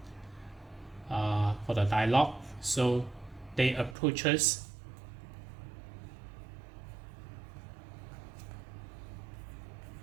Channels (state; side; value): drops out; left; at 4.0 s